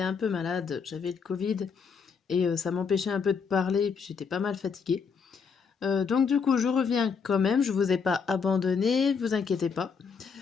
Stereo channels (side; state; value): right; quieter; 5.8 dB